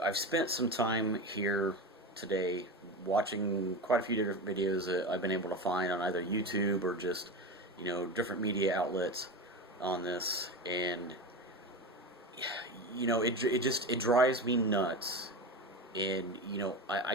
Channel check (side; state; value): both; normal; correlation 0.23